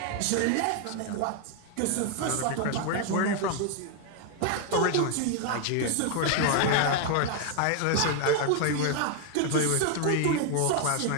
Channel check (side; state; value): both; different; correlation 0.00